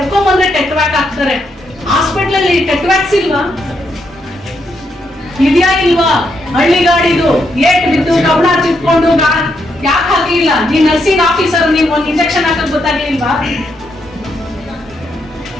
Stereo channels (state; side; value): normal; both; correlation 0.79